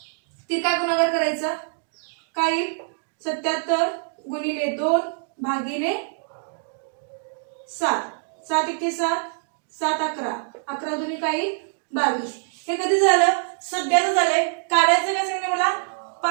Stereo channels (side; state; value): left; silent; digital silence